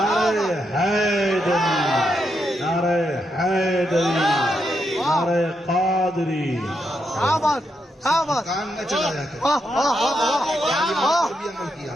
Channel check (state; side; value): normal; both; correlation 0.82